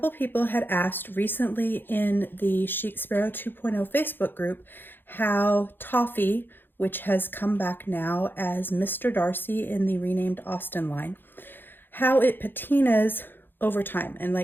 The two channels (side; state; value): right; late; 0.098 ms